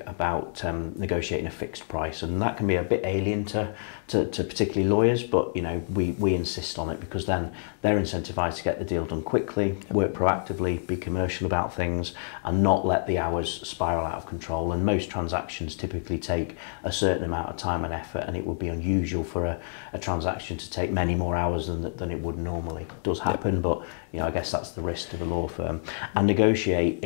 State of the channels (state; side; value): silent; right; digital silence